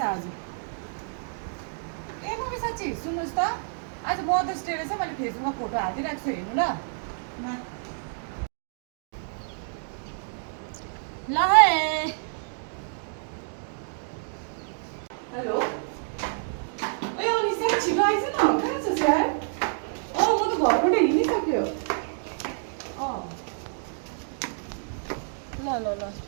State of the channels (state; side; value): silent; left; digital silence